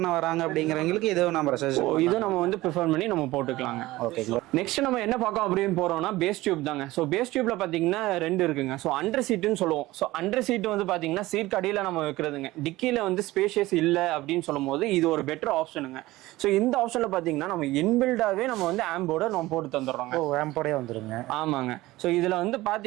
வராங்க அப்படிங்கிறவங்களுக்கு இது நம்ம வந்து ப்ரிஃபர் பண்ணி நம்ம போட்டுக்கலாங்க. ஓகே, நெக்ஸ்ட் நம்ம என்ன பார்க்கோம் அப்படின்னு போறோம்னா பேஸ் டியூப் தாங்க. ஸோ பேஸ் டியூப்ல பாத்தீங்கன்னா 2 இருக்குங்க. ஸோ அண்டர் சீட்டுன்னு சொல்லுவோம். ஸோ அண்டர் சீட் வந்து பாத்தீங்கன்னா சீட் அடியில நம்ம வைக்கிறது இருக்கிறதுங்க. டிக்கில வந்து ஸ்பேஷியஸ் இல்லை அப்படின்னு சொல்லும் போது இது ஒரு பெட்டர் ஆப்ஷனுங்க. ஸோ இந்த ஆப்ஷன்ல பாத்தீங்கன்னா நம்ம இன்பில்டாவே நம்ம வந்து ஆம்போட நம்ம போட்டு தந்துடுறோங்க. ஆம்போடே வந்துருங்க. ஆமாங்க. ஸோ இதுல வந்து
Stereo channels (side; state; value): left; quieter; 18.3 dB